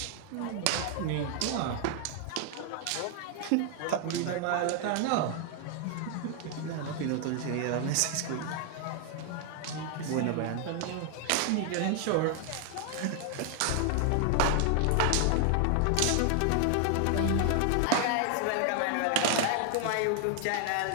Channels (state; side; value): different; both; correlation 0.00